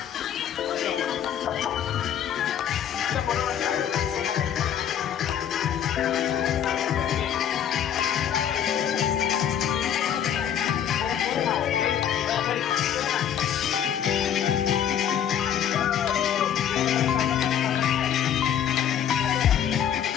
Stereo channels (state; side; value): quieter; right; 9.4 dB